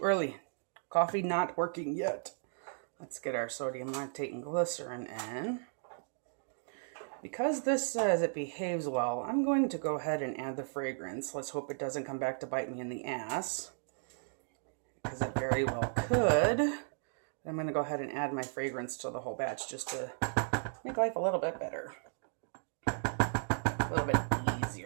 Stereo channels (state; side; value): silent; left; digital silence